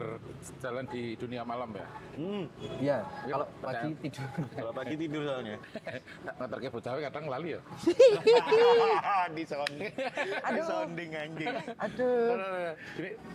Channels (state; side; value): identical; both; correlation 1.00